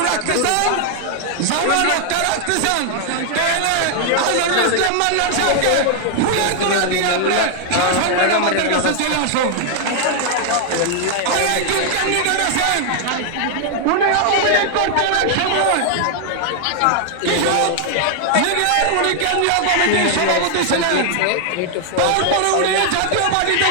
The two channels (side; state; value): both; different; correlation 0.00